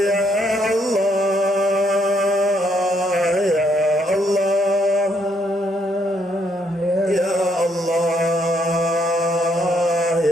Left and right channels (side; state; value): both; normal; correlation 0.72